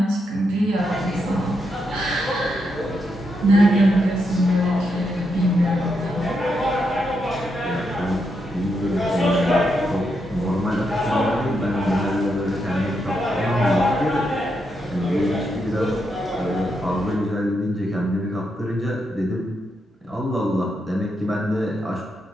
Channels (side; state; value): both; normal; correlation 0.82